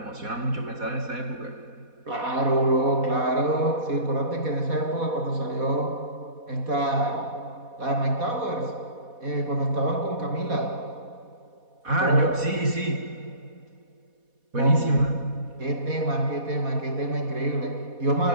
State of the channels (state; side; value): late; left; 4.1 ms